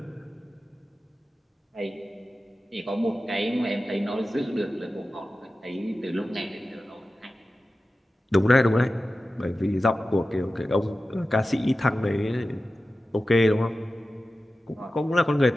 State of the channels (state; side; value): normal; both; correlation 0.94